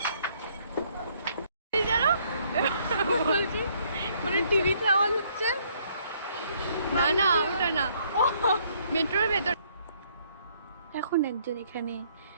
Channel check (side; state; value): both; inverted; correlation -0.66